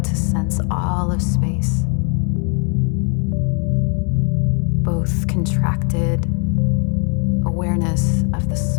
to sense all of space, both contracted awareness of the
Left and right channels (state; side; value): quieter; right; 39.6 dB